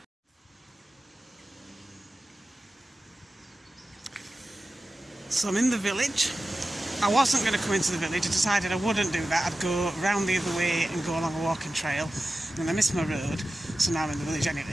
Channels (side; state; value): both; normal; correlation 0.94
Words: So I'm in the village. I wasn't going to come into the village. I decided I wouldn't do that. I'd go round the other way and go along a walking trail. And I missed my road, so now I'm in the village